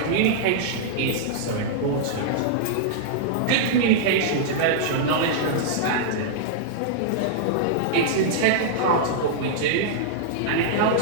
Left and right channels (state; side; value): different; both; correlation -0.02